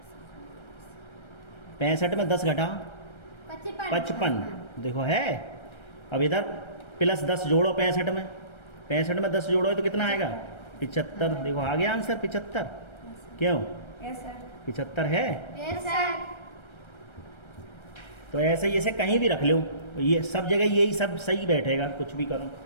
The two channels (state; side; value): late; right; 1.3 ms